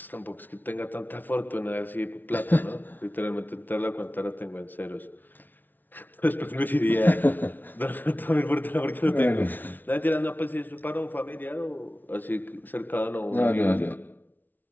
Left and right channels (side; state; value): right; late; 0.086 ms